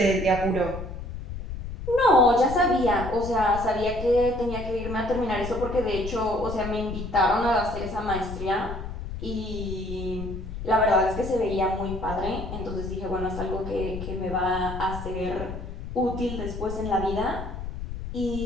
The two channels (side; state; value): left; noise; rumble, 8 dB below the sound